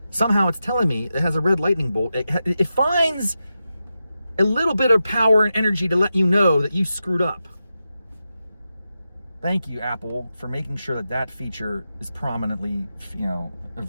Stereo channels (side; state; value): both; inverted; correlation -0.90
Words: Somehow it's telling me it has a red lightning bolt. It finds a little bit of power and energy to let you know that you screwed up. Thank you, Apple, for making sure that feature is prominently,